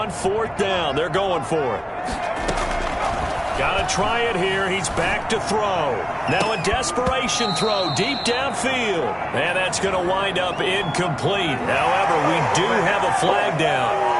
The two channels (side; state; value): both; identical; correlation 1.00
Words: 4th down. They're going for it. Got to try it here. He's back to throw. Now a desperation throw deep downfield. And that's going to wind up incomplete. However, we do have a flag down.